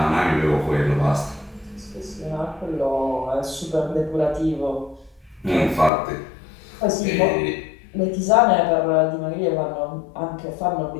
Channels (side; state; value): right; drops out; at 5.9 s